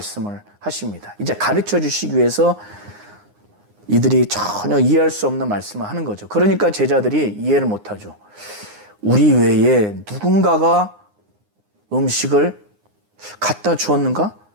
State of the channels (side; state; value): left; late; 9.7 ms